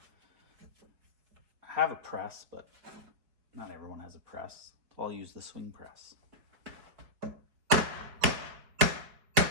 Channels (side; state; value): left; late; 4.6 ms